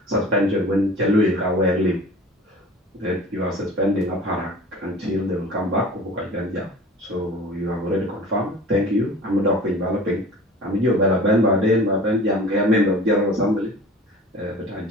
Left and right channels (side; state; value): both; normal; correlation 0.42